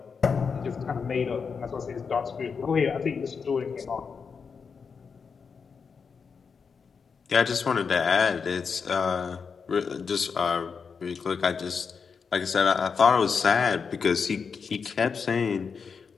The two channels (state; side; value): quieter; right; 5.7 dB